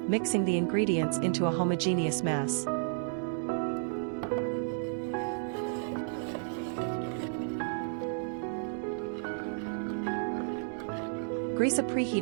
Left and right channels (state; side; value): silent; left; digital silence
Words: mixing the ingredients into a homogeneous mass. Grease a